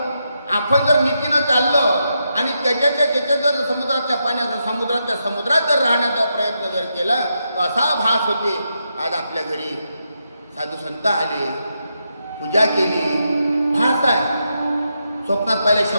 आपण जर नीतीनं चाललं आणि त्याच्या जर समुद्रातल्या पाण्याचा समुद्रात जर राहण्याचा प्रयत्न जर केला तर असा भास होते. आज आपल्या घरी साधू संत आले, पूजा केली, भास आहे. स्वप्नात पाहिले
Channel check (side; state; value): both; inverted; correlation -0.83